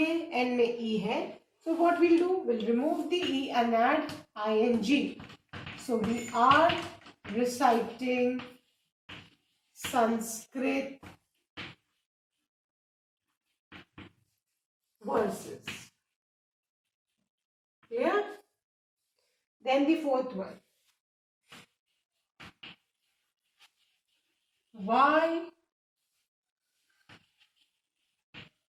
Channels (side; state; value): both; identical; correlation 1.00